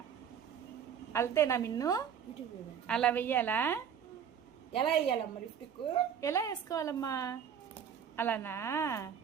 అల్తేనా మిన్ను? అలా వెయ్యాలా? ఎలా వేయాలమ్మా లిప్స్టిక్? ఎలా వేసుకోవాలమ్మా? అలానా?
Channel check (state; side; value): quieter; left; 8.0 dB